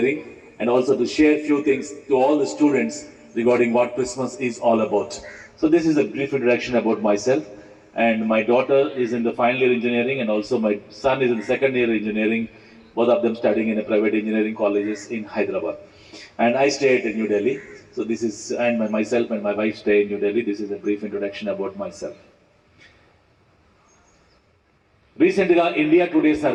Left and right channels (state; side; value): identical; both; correlation 1.00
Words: and also to share few things to all the students regarding what Christmas is all about. So this is a brief introduction about myself. And my daughter is in the final year engineering, and also my son is in the second year engineering, both of them studying in a private engineering colleges in Hyderabad. And I stay at New Delhi. So this is, and myself and my wife stay in New Delhi. This is a brief introduction about myself. Recently, India Today